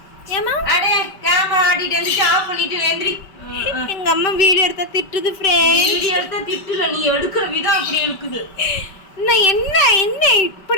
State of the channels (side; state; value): right; late; 5.2 ms